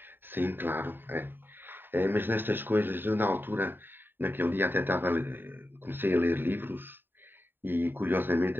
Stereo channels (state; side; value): late; left; 0.096 ms